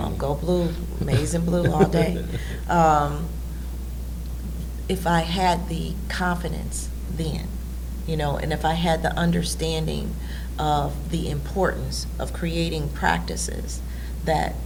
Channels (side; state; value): both; identical; correlation 1.00